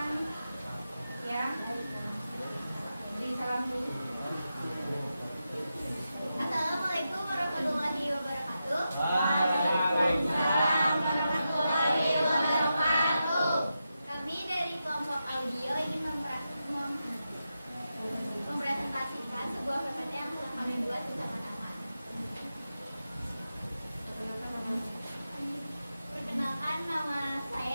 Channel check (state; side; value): inverted; both; correlation -0.89